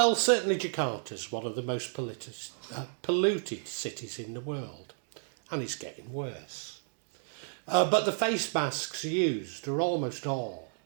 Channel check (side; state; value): left; silent; digital silence